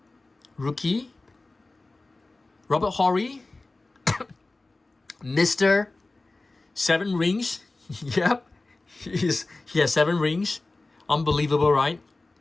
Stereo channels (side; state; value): right; quieter; 3.2 dB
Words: Rookie. Robert Horry. Mr. 7 rings. Yep. He has 7 rings. Unbelievable, right?